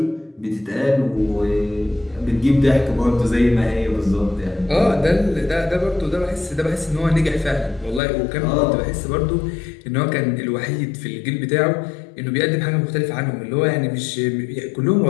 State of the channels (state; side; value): drops out; right; at 8.0 s